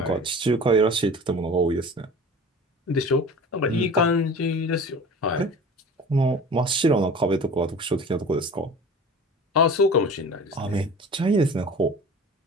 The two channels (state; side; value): normal; both; correlation 0.39